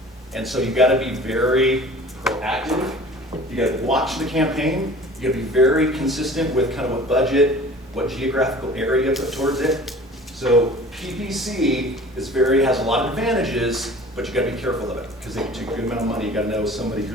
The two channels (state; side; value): normal; both; correlation 0.44